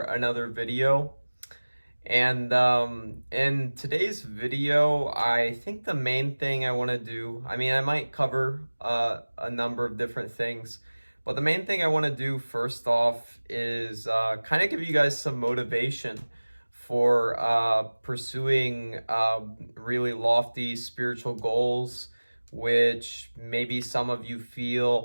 another video. And in today's video, I think the main thing I want to do, I might cover a number of different things, but the main thing I want to do first off is kind of give you guys some motivation for pursuing really lofty spiritual goals, which maybe some of you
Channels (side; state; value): both; inverted; correlation -1.00